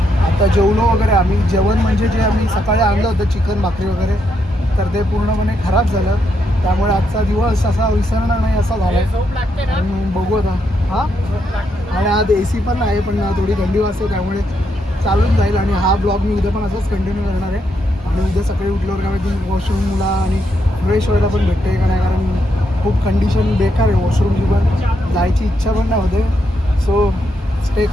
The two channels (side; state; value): both; normal; correlation 0.79